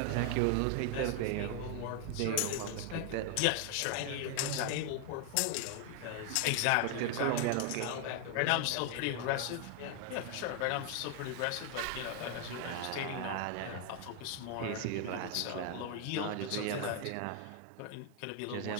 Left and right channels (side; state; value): both; different; correlation 0.00